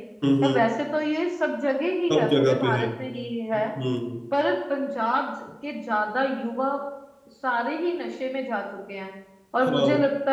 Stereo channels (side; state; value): both; identical; correlation 1.00